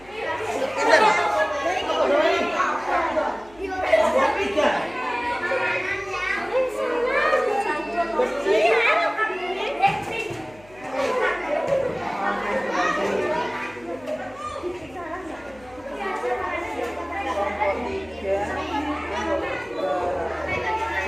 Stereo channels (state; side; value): noise; left; hum, 25 dB below the sound